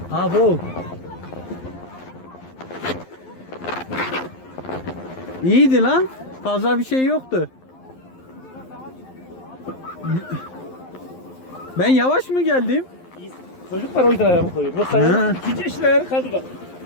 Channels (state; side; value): late; right; 11 ms